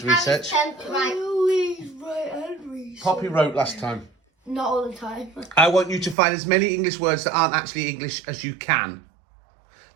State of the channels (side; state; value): left; drops out; at 6.2 s